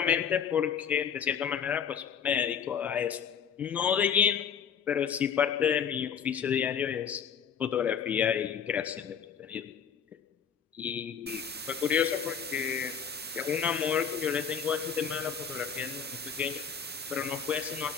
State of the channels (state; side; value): quieter; right; 7.3 dB